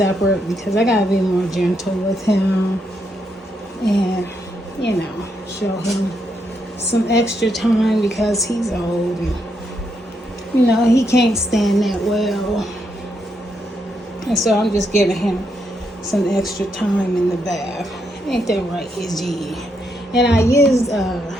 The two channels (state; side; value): normal; both; correlation 0.79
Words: because I gotta be more gentle with him, and you know, show him some extra time because he's old and you know he can't stand that well, and so I'm just giving him some extra time in the bath. Ain't that right, Izzy? And I used